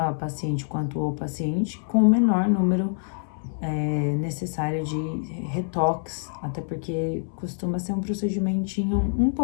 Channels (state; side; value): silent; right; 61 dB below the other